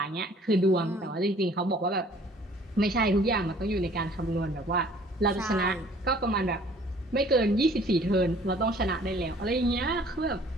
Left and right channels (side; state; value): both; normal; correlation 0.55